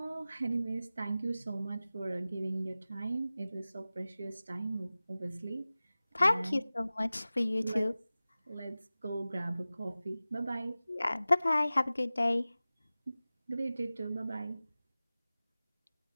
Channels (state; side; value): inverted; both; correlation -0.96